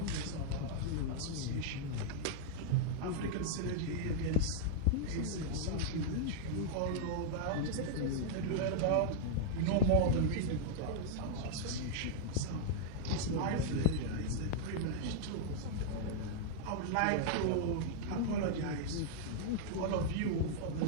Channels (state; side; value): different; both; correlation -0.01